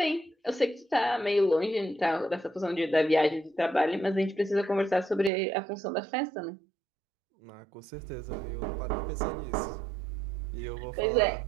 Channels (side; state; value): left; drops out; at 5.3 s